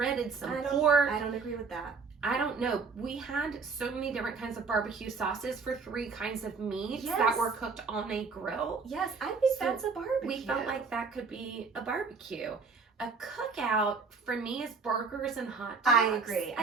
some pork. I don't agree with that. I don't know. We had so many different kinds of barbecue sauces for 3 kinds of meats that were cooked on a grill. Yes, I think that's a barbecue. We felt like that could be a barbecue. A cookout for me is burgers and hot dogs. I agree.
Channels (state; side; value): quieter; left; 4.8 dB